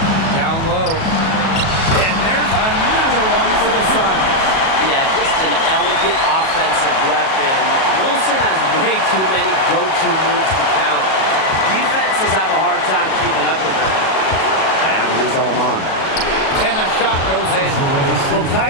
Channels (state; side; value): late; right; 37 ms